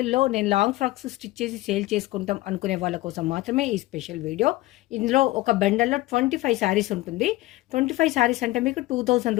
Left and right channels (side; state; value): right; quieter; 18.4 dB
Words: నేను లాంగ్ ఫ్రాక్స్ స్టిచ్ చేసి సేల్ చేసుకుంటాం అనుకునే వాళ్ళ కోసం మాత్రమే ఈ స్పెషల్ వీడియో. ఇందులో ఒక బండల్లో 25 శారీస్ ఉంటుంది. 25 శారీస్ అంటే మీకు 2000